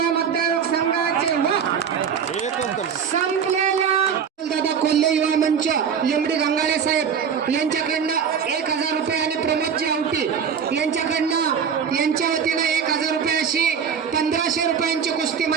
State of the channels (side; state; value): left; quieter; 7.2 dB